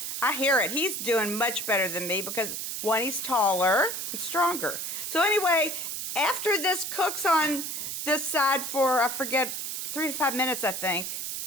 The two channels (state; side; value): noise; right; hiss, 4 dB below the sound